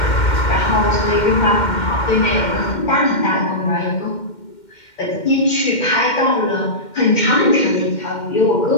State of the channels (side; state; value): right; late; 2.1 ms